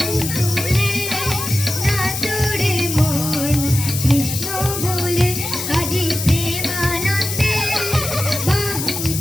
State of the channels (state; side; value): noise; left; hiss, 4 dB below the sound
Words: তুলে নাচরে মন কৃষ্ণ বলে। আজি প্রেমানন্দে বাহু